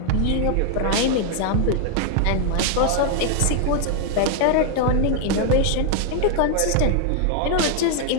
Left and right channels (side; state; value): both; different; correlation 0.00